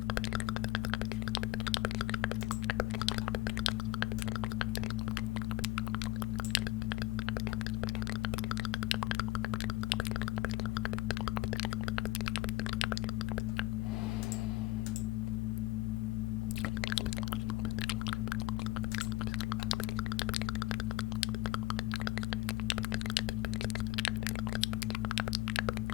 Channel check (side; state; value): right; quieter; 18.3 dB